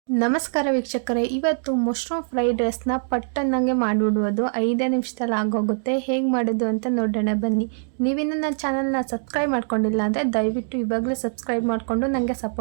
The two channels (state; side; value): silent; left; digital silence